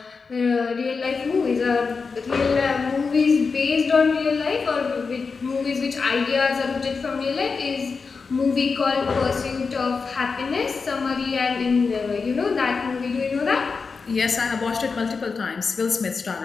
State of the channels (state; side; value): quieter; right; 4.8 dB